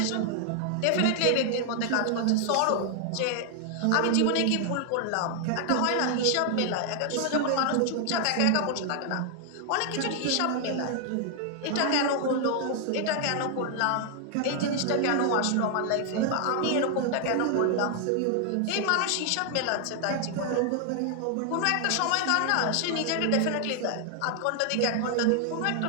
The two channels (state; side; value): different; both; correlation 0.00